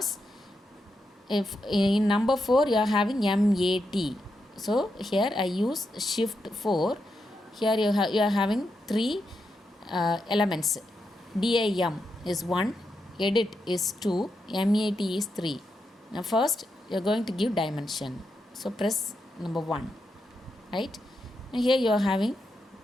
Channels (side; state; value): both; normal; correlation 0.85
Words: if in number 4 you are having MAT. So here I use shift 4. Here you are having 3 elements. DIM is 1, edit is 2, MAT is 3. Now first you are going to give dimension. So press number 1, right? Now here you are having